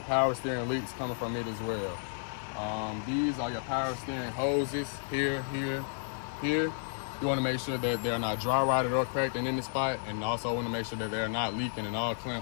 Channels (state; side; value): silent; right; 56 dB below the other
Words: steering leaks coming from it as well. These are your power steering hoses here. You want to make sure that they're not dry rotted or cracked in any spot, and also want to make sure that they're not leaking and all